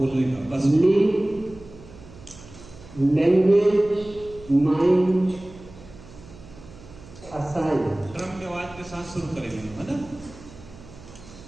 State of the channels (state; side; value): noise; right; hum, 19 dB below the sound